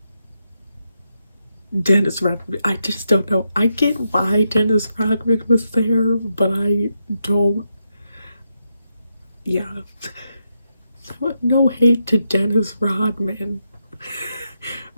Dennis Rodman. I just don't know. I get why Dennis Rodman was there, but I don't, yeah. No hate to Dennis Rodman,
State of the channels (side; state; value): both; inverted; correlation -0.83